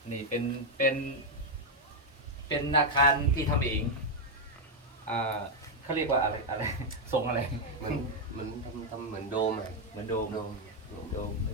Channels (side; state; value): both; normal; correlation 0.01